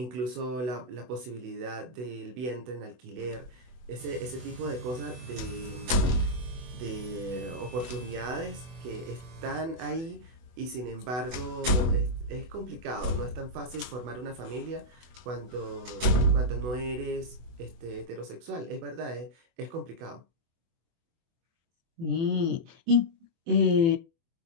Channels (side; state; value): left; late; 24 ms